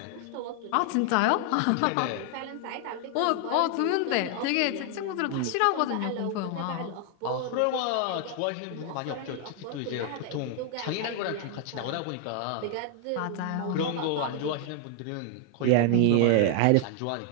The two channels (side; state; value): both; different; correlation 0.00